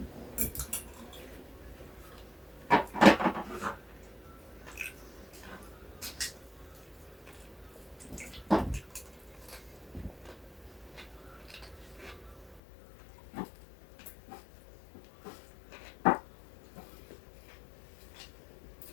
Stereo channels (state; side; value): drops out; right; at 12.6 s